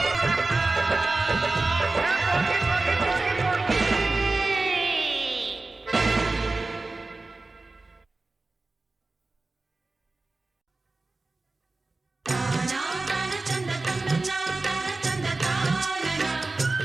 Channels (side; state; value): left; quieter; 3.3 dB